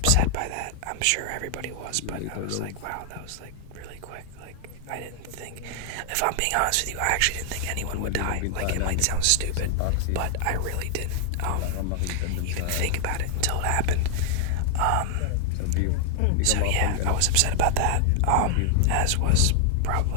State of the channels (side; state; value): both; different; correlation 0.00